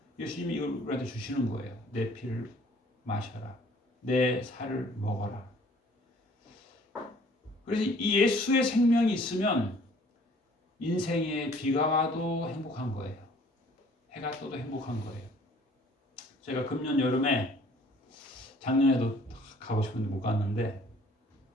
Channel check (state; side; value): normal; both; correlation 0.55